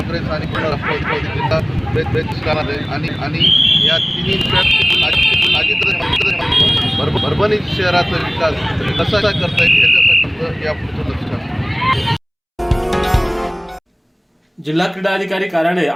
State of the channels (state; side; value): identical; both; correlation 1.00